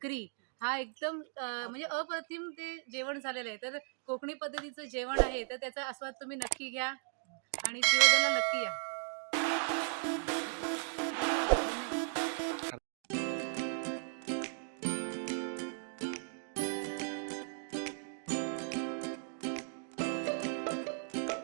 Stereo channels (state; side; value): silent; left; 53 dB below the other